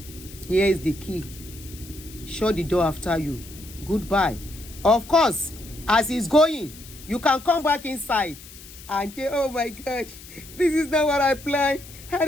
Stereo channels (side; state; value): left; noise; hiss, 18 dB below the sound